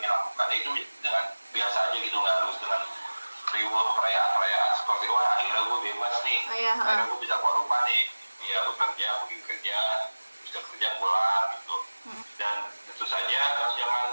lakukan itu dengan biasa aja gitu, nggak harus dengan reward perayaan seperti wah akhirnya gue bebas nih, akhirnya gue bisa keluar rumah nih, ya bekerja, pergi kerja, bisa kerja pulang gitu. Dan tentu saja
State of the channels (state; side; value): inverted; both; correlation -1.00